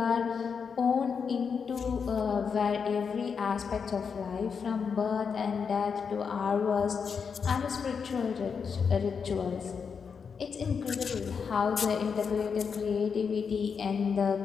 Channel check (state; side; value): quieter; right; 6.1 dB